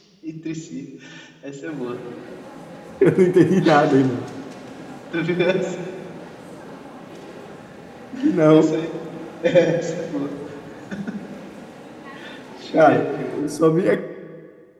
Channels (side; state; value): both; identical; correlation 1.00